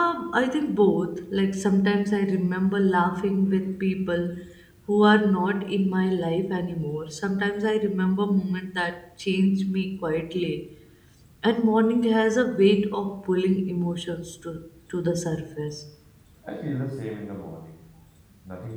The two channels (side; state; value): both; identical; correlation 1.00